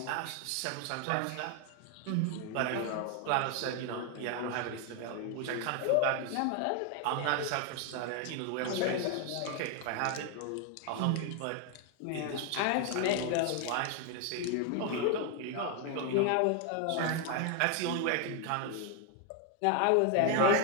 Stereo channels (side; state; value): both; different; correlation 0.01